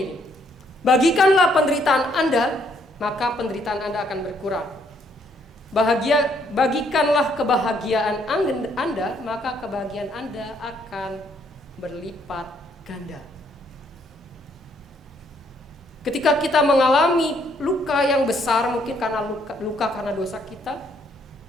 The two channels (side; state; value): both; normal; correlation 0.69